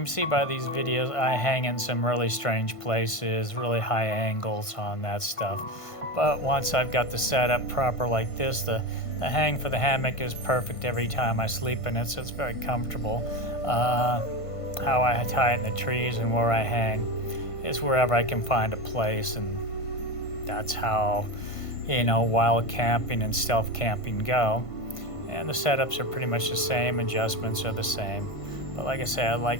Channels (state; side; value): late; right; 1.5 ms